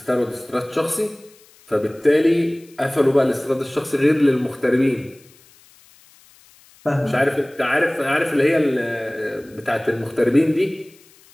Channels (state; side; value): noise; left; hiss, 28 dB below the sound